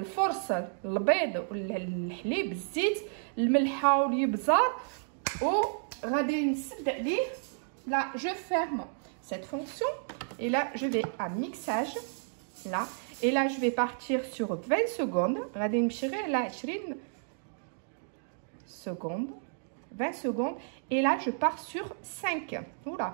البيض والحليب الزيت الملحه والابزار وغادي نسد عليه. Là je ferme cette fonction et là je vais à mixage là et là je vais partir sur 20 secondes. غادي نمشي غير على 20 secondes. 20 secondes et là je pars sur 5.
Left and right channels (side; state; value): left; silent; digital silence